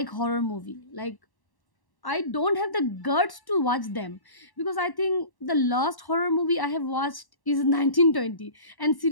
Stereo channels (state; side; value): late; right; 1.1 ms